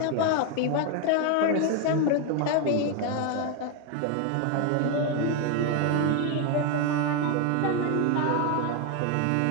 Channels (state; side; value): different; both; correlation 0.01